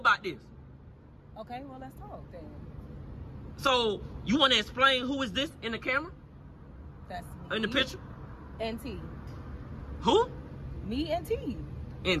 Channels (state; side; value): identical; both; correlation 1.00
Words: this. Okay, well, let's talk then. So, you want to explain who is this in the camera? That's me. In the picture? And T. Who? Me and T.